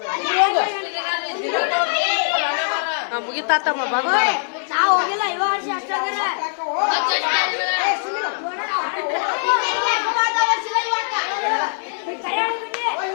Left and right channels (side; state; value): right; silent; digital silence